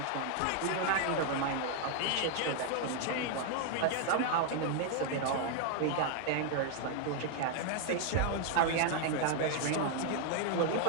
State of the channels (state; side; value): different; both; correlation 0.00